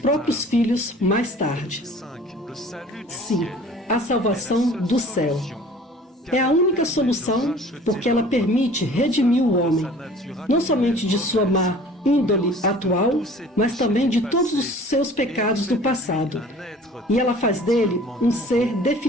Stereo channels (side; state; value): both; normal; correlation 0.48